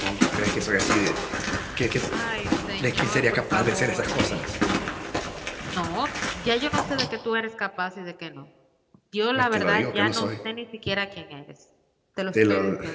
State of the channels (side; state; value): both; identical; correlation 1.00